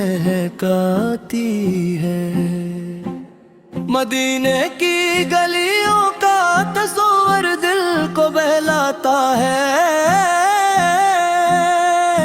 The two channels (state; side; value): identical; both; correlation 1.00